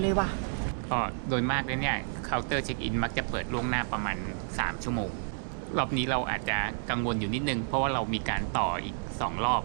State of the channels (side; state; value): left; silent; digital silence